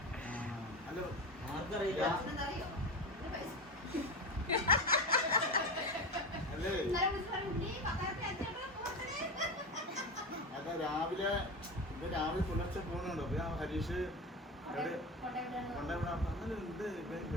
ഹലോ ആർക്കറിയില്ല. അല്ലേ അതാ രാവിലെ പുലർച്ചെ പോകുന്നുണ്ടോ? അപ്പൊ ഞാൻ ഹരീഷ് ഉണ്ട്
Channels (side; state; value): both; normal; correlation 0.22